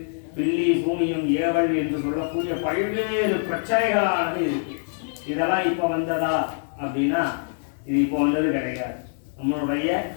பில்லி சூனியம் ஏவல் என்று சொல்லக்கூடிய பல்வேறு பிரச்சனைகளானது இருக்கு. இதெல்லாம் இப்போ வந்ததா அப்படின்னா இது இப்போ வந்தது கிடையாது. நம்மளுடைய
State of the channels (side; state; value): right; silent; digital silence